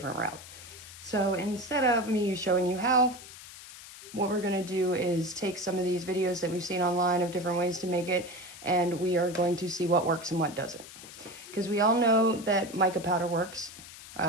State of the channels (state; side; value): noise; left; hiss, 16 dB below the sound